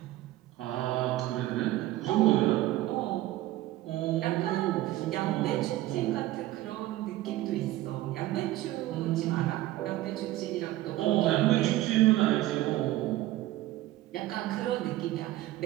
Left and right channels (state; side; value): quieter; left; 15.8 dB